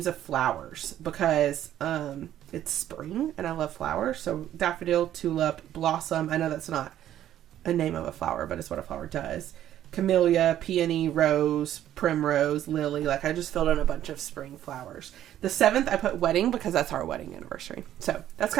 of flowers, because it's spring and I love flowers. So daffodil, tulip, blossom. I know that's not a name of a flower, but it's what a flower does. Camellia, peony, rose, primrose, lily. Like, I just filled in a bunch of spring flowers. The 7th, I put wedding because that's our wedding anniversary. So that's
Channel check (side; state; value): left; quieter; 11.8 dB